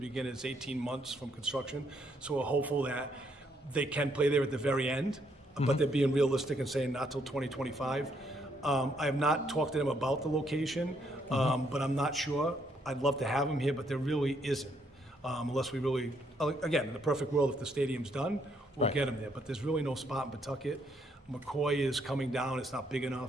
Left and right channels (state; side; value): normal; both; correlation 0.72